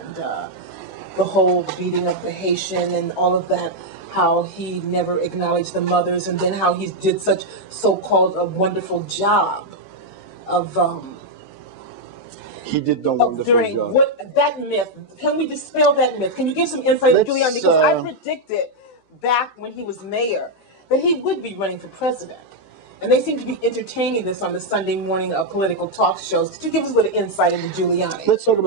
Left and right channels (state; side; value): late; right; 14 ms